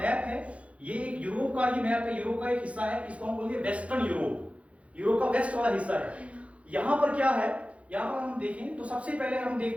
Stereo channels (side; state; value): left; late; 0.063 ms